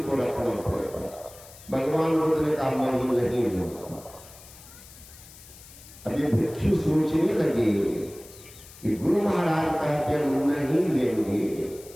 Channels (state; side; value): noise; left; hiss, 20 dB below the sound